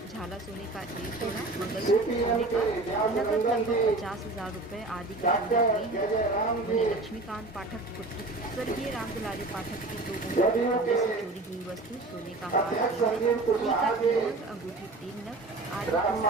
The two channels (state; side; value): quieter; left; 3.1 dB